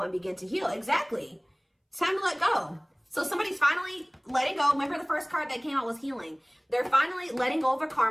and begin to heal. Exactly. It's time to let go. So somebody's finally letting go. Remember the first card that came out was healing. They're finally letting go of a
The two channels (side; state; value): both; identical; correlation 1.00